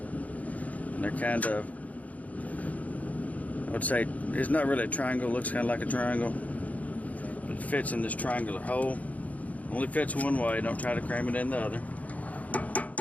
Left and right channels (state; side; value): late; right; 0.072 ms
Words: they're kind of, I would say, it's not really a triangle. It looks kind of like a triangle, but it fits in this triangular hole. Only fits one way. Don't try to cram it in the other.